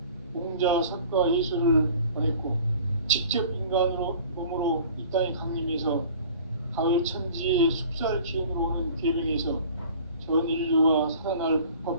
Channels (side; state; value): both; inverted; correlation -0.46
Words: 공자, 석가, 예수를 보냈고 직접 인간으로 몸으로 이 땅에 강림해서 가을 천지의 숲살 기운으로 오는 계명에서 전 인류와 살아날